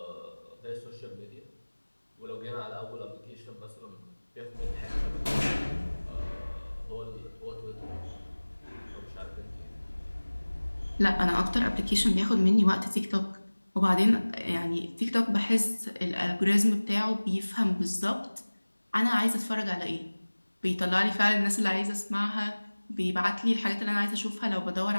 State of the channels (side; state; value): both; inverted; correlation -1.00